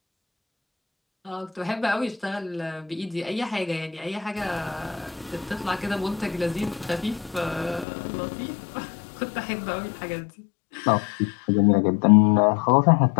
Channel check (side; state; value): right; drops out; at 7.9 s